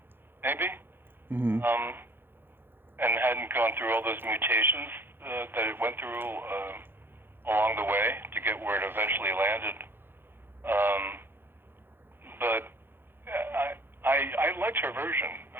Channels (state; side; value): late; left; 0.10 ms